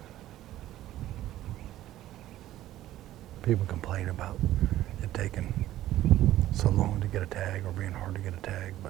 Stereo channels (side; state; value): left; quieter; 14.0 dB